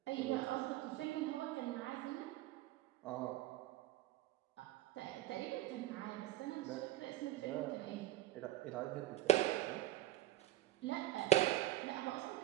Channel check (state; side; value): quieter; left; 15.1 dB